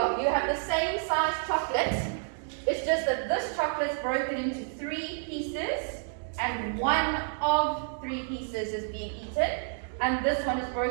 have the same size chocolate. It's just that this chocolate's broken into 3 pieces and 1 of 3 pieces is being eaten. And this one is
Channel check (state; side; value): silent; left; digital silence